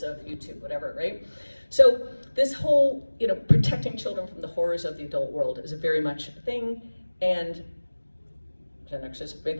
of YouTube, whatever, right? So this whole, protecting children from the horrors of the adult world is very much a thing, and Gen Xers made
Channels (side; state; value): both; inverted; correlation -1.00